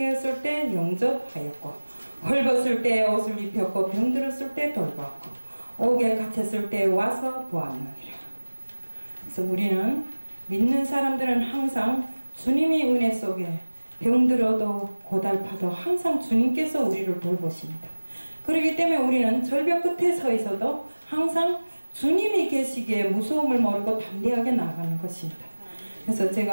때 영접하였고 헐벗을 때 옷을 입혔고 병들었을 때 돌봤고 옥에 갇혔을 때 와서 보았느니라. 그래서 우리는 믿는 사람들은 항상 주님이 은혜 속에 병들어도 고달파도 항상 주님께서 우리를 돌보십니다. 그렇기 때문에 우리는 절벽 끝에 서 있어도 항상 주님이 계시기에 무서움을 모르고 담대하게 나아가는 것입니다. 그래서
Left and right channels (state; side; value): inverted; both; correlation -1.00